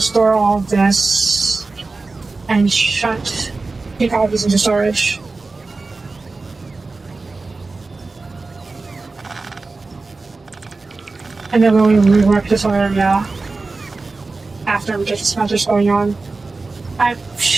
store all of this and take all of this into storage. And then we'll rework this area after we get the smelters going on. I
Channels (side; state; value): left; quieter; 3.7 dB